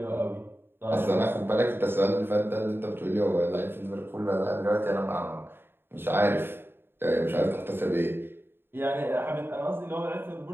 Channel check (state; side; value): late; left; 0.11 ms